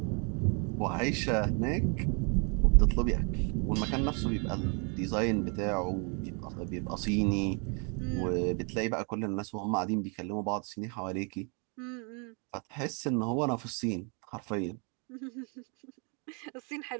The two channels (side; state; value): left; quieter; 36.5 dB